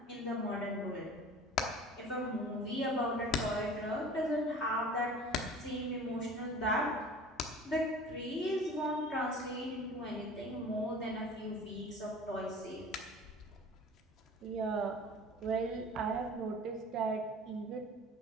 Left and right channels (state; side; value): normal; both; correlation 0.42